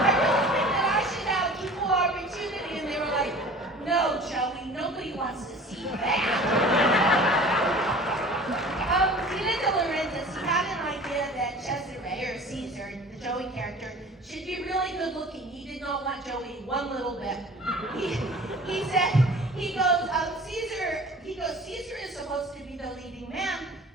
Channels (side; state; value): both; normal; correlation 0.44